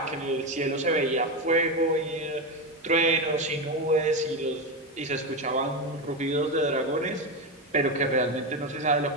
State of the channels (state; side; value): normal; both; correlation 0.14